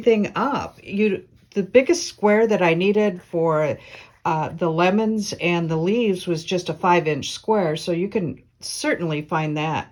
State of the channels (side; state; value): both; identical; correlation 1.00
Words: up. The biggest square that I needed for the lemons and the leaves was just a 5-inch square, so you can certainly find